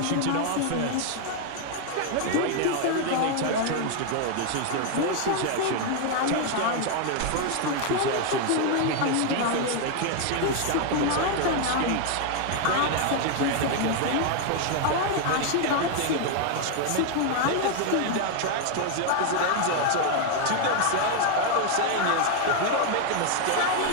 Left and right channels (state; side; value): different; both; correlation 0.01